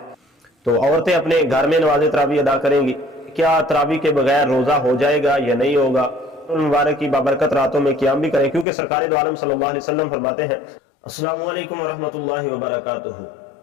तो औरतें अपने घर में नमाज तरावी अदा करेंगी। क्या तरावी के बगैर रोज़ा हो जाएगा या नहीं होगा? मुबारक की बाबरकत रातों में क़याम भी करें, क्योंकि सरकार दो आलम सल्लल्लाहु अलैहि वसल्लम फरमाते हैं। अस्सलामु अलैकुम व रहमतुल्लाहि व बरकातुहू।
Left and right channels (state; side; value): drops out; right; at 8.7 s